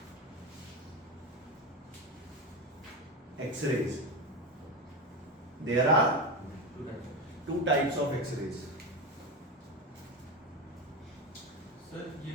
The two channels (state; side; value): normal; both; correlation 0.18